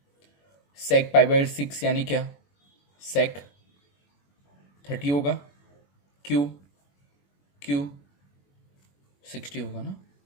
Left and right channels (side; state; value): right; late; 21 ms